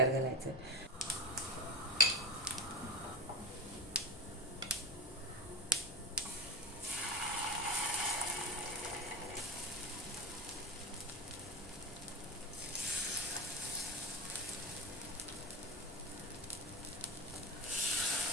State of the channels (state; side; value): normal; both; correlation 0.23